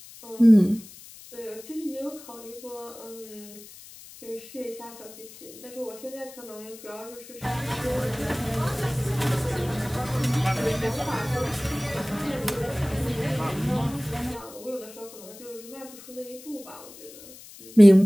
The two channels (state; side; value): noise; left; hiss, 18 dB below the sound